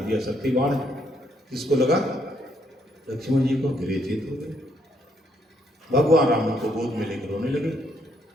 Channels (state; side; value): normal; both; correlation 0.72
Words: दिया शक्ति बाण। किसको लगा? लक्ष्मण जी को। गिरे जीत हो गए। भगवान राम उनको गोद में लेकर रोने लगे।